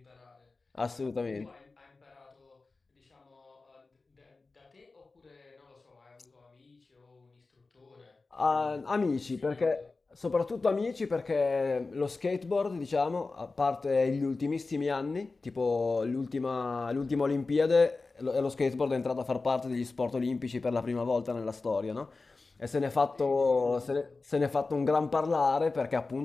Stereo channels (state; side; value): quieter; right; 3.8 dB